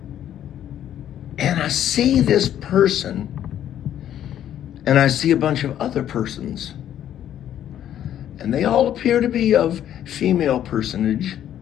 And I see this person, and I see a bunch of other persons. And they all appear to be of female personage.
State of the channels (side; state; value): right; quieter; 10.9 dB